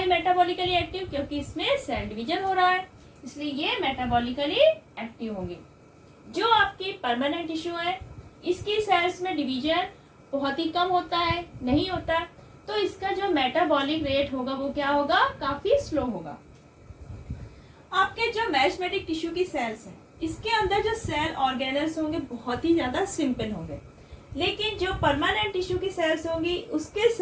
मेटाबॉलिकली एक्टिव, क्योंकि इसमें सेल डिवीजन हो रहा है, इसलिए ये मेटाबॉलिकली एक्टिव होंगी। जो आपकी परमानेंट टिश्यू है, इसकी सेल्स में डिवीजन बहुत ही कम होता है, नहीं होता, तो इसका जो मेटाबॉलिक रेट होगा वो क्या होगा, काफी स्लो होगा। आपके जो मेरिस्टेमेटिक टिश्यू की सेल्स हैं, इसके अंदर जो सेल ऑर्गेनल्स होंगे बहुत ही ज्यादा सिंपल होंगे। लेकिन जो परमानेंट टिश्यू की सेल्स होंगी उसके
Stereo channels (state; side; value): identical; both; correlation 1.00